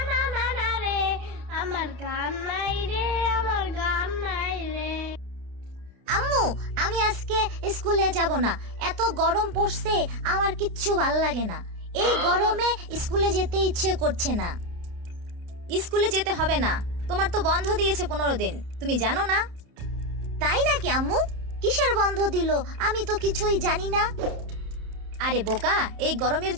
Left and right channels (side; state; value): left; late; 30 ms